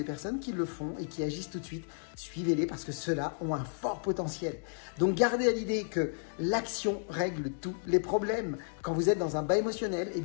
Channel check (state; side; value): silent; right; digital silence